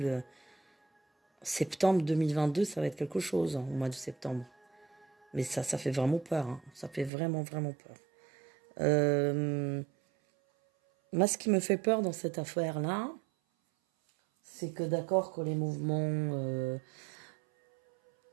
Septembre 2022, ça va être quelque chose, hein, au mois de septembre. Mais ça fait vraiment peur, hein. Ça fait vraiment, vraiment peur. Moi, ce qui me fait peur dans cette affaire-là, c'est que d'accord que les mouvements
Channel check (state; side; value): drops out; left; at 7.1 s